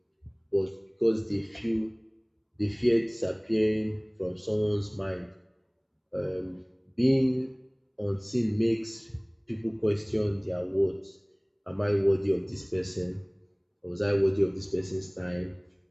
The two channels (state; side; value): identical; both; correlation 1.00